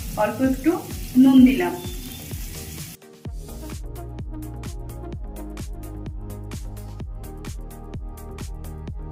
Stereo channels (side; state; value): both; identical; correlation 1.00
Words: অল্প একটু নুন দিলাম।